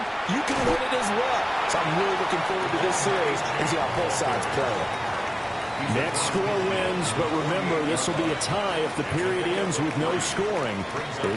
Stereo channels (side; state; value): both; identical; correlation 1.00